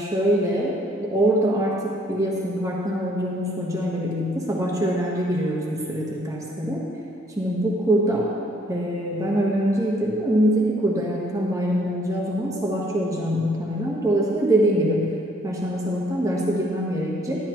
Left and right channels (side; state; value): both; normal; correlation 0.64